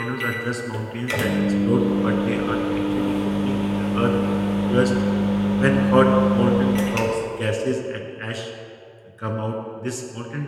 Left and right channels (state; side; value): identical; both; correlation 1.00